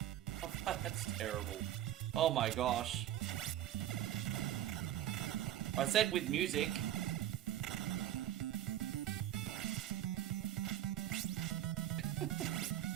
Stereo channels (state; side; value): quieter; left; 12.0 dB